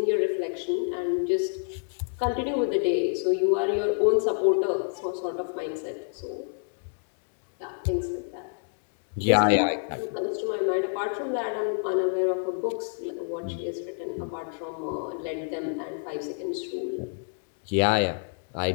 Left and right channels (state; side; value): silent; right; 59 dB below the other